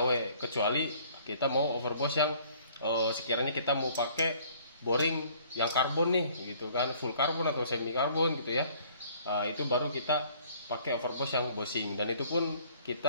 kecuali kita mau overboss yang sekiranya kita mau pakai boring yang karbon nih gitu kan, full karbon atau semi karbon gitu ya. Itu baru kita pakai overboss yang bosing, dan itu pun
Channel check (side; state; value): both; inverted; correlation -0.57